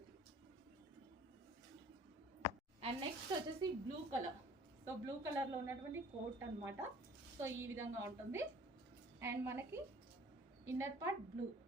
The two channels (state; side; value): normal; both; correlation 0.51